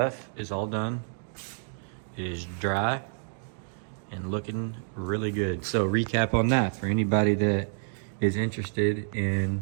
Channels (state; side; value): silent; left; digital silence